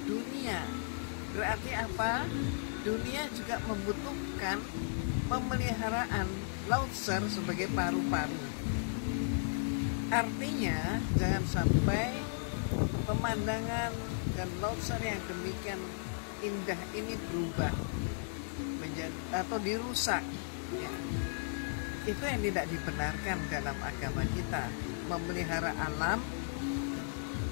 dunia. Berarti apa? Dunia juga membutuhkan pemeliharaan Leuser sebagai paru-paru. Artinya jangan sampai pemandangan dan Leuser yang demikian indah ini berubah menjadi atau dirusak ya. Itu yang tidak dibenarkan dalam agama kita. Memelihara alam,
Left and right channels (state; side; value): silent; right; digital silence